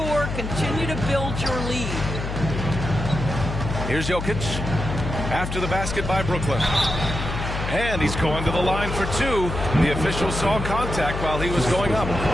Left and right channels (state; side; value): noise; left; hum, 5 dB below the sound